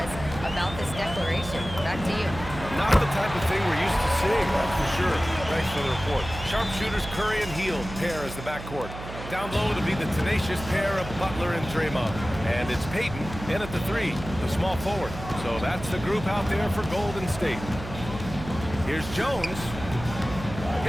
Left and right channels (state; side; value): noise; right; hum, 11 dB below the sound